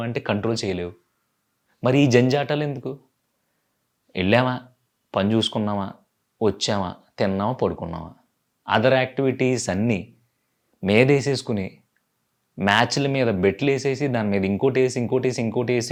అంటే కంట్రోల్ చేయలేవు. మరి ఈ జంజాటాలెందుకు? ఎళ్ళామా, పని చూసుకున్నామా, వచ్చామా, తిన్నామా, పడుకున్నామా. అదర్ యాక్టివిటీస్ అన్నీ మీదేసేసుకొని మ్యాచ్‌ల మీద బెట్లేసేసి దాని మీద ఇంకోటేసి, ఇంకోటేసి,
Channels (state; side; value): identical; both; correlation 1.00